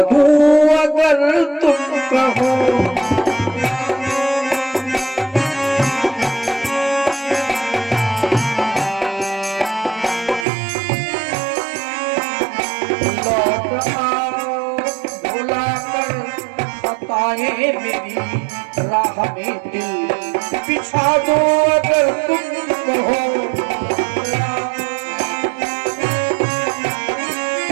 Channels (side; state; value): left; drops out; at 10.5 s